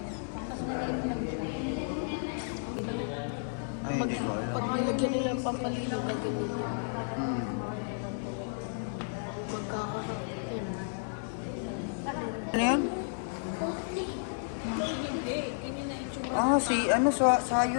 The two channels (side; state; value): right; silent; 56 dB below the other